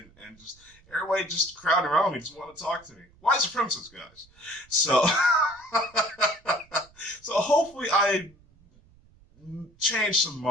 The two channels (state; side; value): noise; right; rumble, 29 dB below the sound